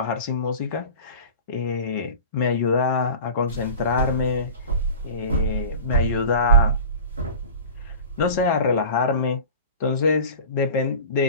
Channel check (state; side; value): inverted; both; correlation -0.37